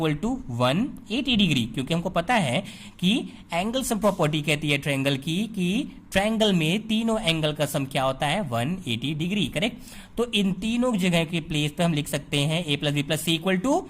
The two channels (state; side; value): identical; both; correlation 1.00